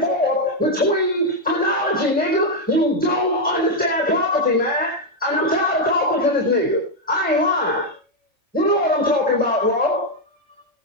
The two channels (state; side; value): normal; both; correlation 0.01